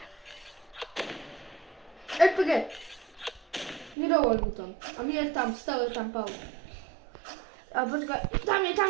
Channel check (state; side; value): drops out; left; at 4.0 s